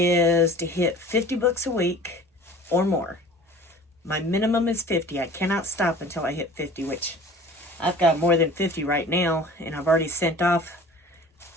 to hit 50 books a week or more. My minimum is 50. I cannot stop until I hit 50, which I've got more than 50 right now. And I've already sent off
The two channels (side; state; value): both; normal; correlation 0.44